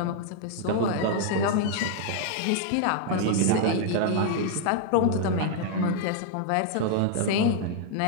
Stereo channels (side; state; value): both; different; correlation 0.00